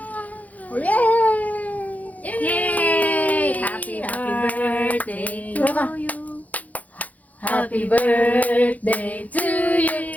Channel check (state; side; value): late; right; 0.076 ms